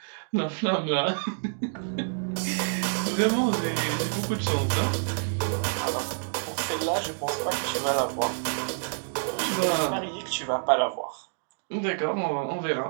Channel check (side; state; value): left; silent; digital silence